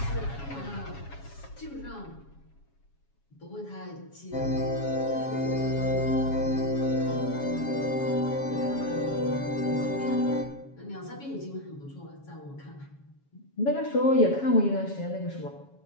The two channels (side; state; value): right; late; 7.2 ms